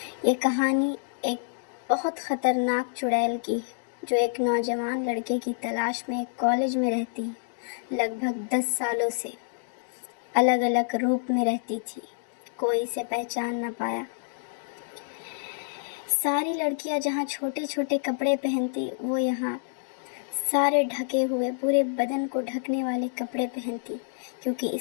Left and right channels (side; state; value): right; silent; digital silence